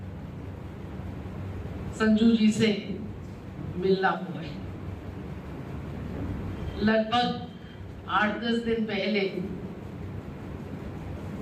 संजू जी से मिलना हुआ है। लगभग 8-10 दिन पहले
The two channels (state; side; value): identical; both; correlation 1.00